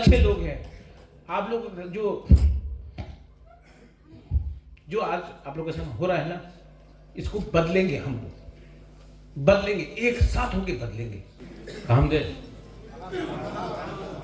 लोग हैं। आप लोग जो आज आप लोगों के साथ हो रहा है ना, इसको बदलेंगे हम लोग, बदलेंगे, एक साथ होके बदलेंगे। काम दे,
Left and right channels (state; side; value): identical; both; correlation 1.00